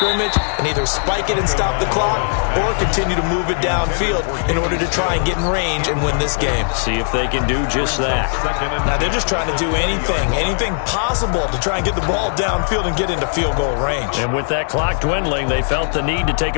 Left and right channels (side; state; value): right; silent; digital silence